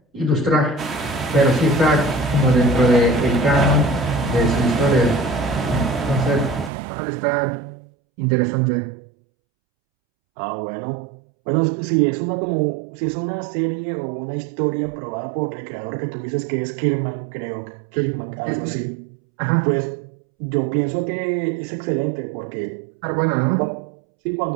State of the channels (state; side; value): drops out; left; at 6.7 s